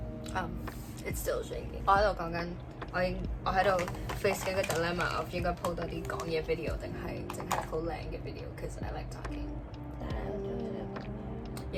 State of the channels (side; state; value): both; identical; correlation 1.00